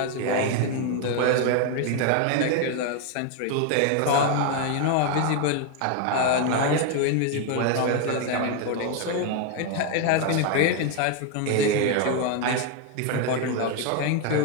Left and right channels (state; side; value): different; both; correlation 0.01